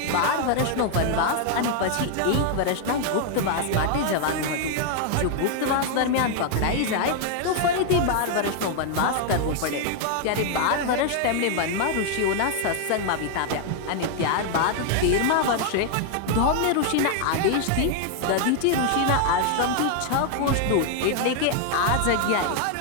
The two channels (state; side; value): different; both; correlation 0.00